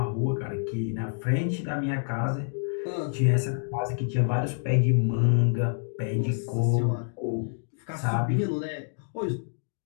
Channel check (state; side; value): silent; right; digital silence